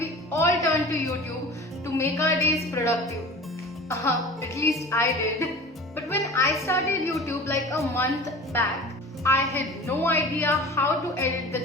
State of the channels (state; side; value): normal; both; correlation 0.39